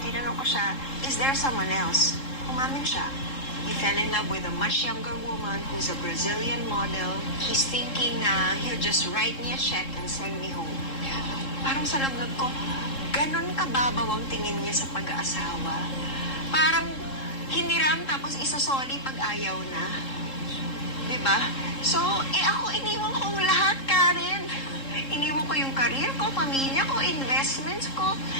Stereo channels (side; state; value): right; late; 3.7 ms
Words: Tinanong ko siya, is there someone else? Umamin siya. He fell in love with a much younger woman who's a Brazilian model. He's thinking na he'll just write me a check and send me home. Parang sa lablab ko, ganon kababaw ang tingin niya sa pag-aasawa. Parang hiniram tapos isasoli pag ayaw na. Diba? So, ako iniwan ko ang lahat, Karen. Iniwan ko yung career ko, pamilya ko, investments ko.